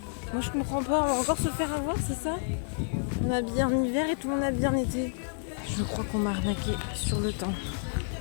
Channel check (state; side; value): silent; right; digital silence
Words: Moi je comprends pas, on va encore se faire avoir, c'est ça? On est habillé en hiver et tout le monde est habillé en été. Je crois qu'on m'a arnaqué sur le temps.